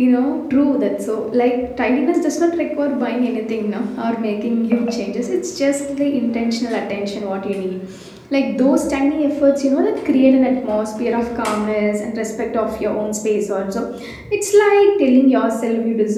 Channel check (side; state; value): both; identical; correlation 1.00